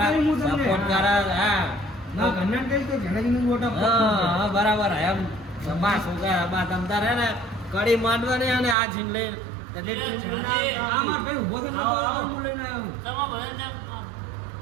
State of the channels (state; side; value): drops out; left; at 8.8 s